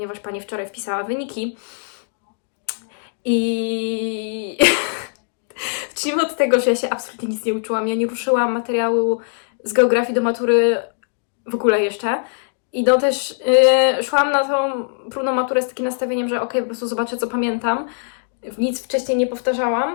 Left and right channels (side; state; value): right; silent; digital silence